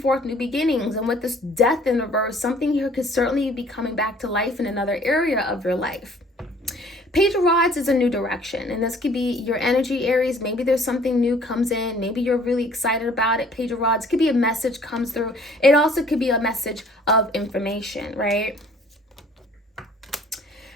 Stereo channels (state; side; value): normal; both; correlation 0.56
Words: new beginnings. And with this Death in reverse, something here could certainly be coming back to life in another area of your life. Page of Rods is a new direction, and this could be your energy, Aries. Maybe there's something new comes in. Maybe you're really excited about it. Page of Rods could be a message comes through. It also could be a message of information, right?